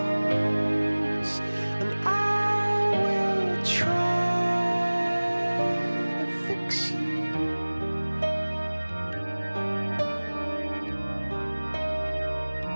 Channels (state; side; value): inverted; both; correlation -1.00